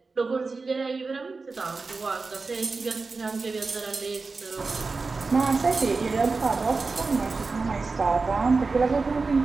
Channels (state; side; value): quieter; left; 4.1 dB